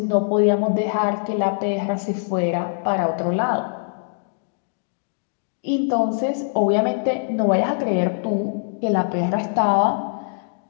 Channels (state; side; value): silent; right; digital silence